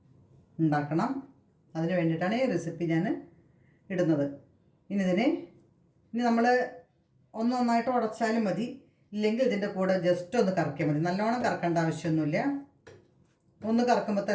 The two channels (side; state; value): both; identical; correlation 1.00